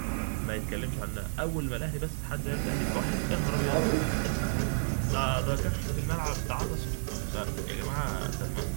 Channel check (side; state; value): left; silent; digital silence